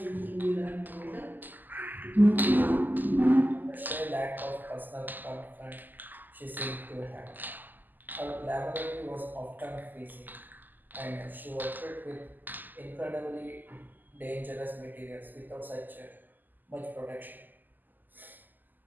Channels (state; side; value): late; left; 0.087 ms